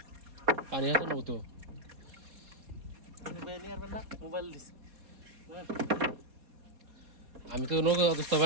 পানি আছে না তো? মোবাইল দিছি আমি তো নৌকা দোস্ত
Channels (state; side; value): late; left; 4.2 ms